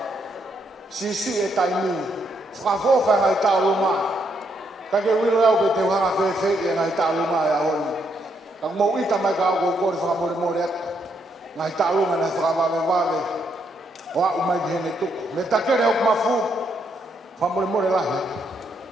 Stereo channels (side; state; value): both; normal; correlation 0.76